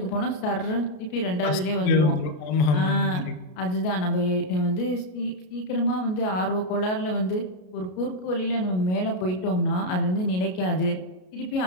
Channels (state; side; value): late; right; 33 ms